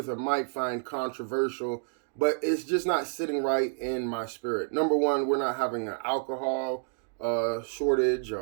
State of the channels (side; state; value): left; silent; digital silence